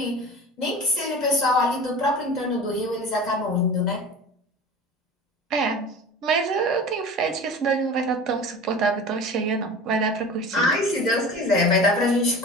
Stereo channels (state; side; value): normal; both; correlation 0.36